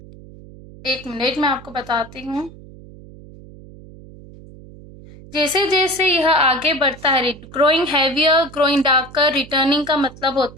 एक मिनट मैं आपको बताती हूँ. जैसे जैसे यह आगे बढ़ता है, growing heavier, growing darker, returning का मतलब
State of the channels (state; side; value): noise; right; hum, 19 dB below the sound